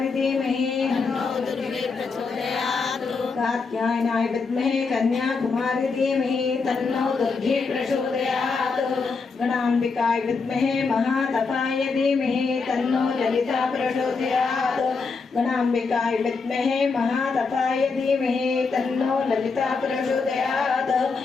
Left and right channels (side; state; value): right; quieter; 4.6 dB